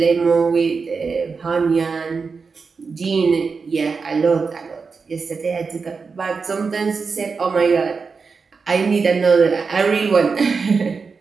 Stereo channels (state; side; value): quieter; left; 4.9 dB